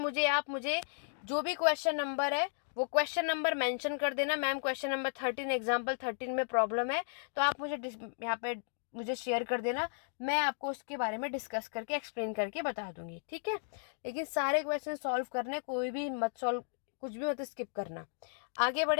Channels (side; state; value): right; silent; digital silence